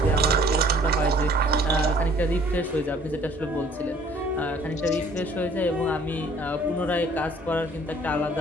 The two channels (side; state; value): both; normal; correlation 0.56